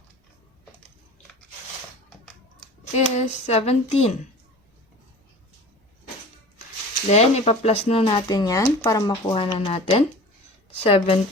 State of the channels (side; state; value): both; normal; correlation 0.39